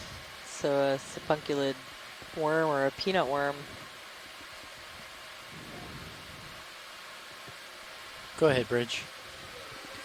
so a sipunculid worm or a peanut worm. Go ahead, Bridge.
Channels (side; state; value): both; identical; correlation 1.00